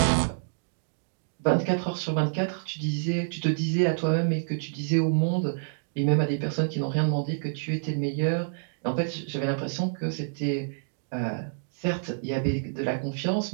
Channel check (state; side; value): silent; left; digital silence